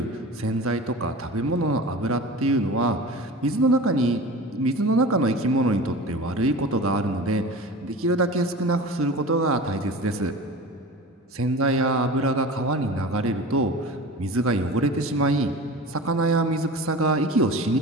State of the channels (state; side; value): normal; both; correlation 0.34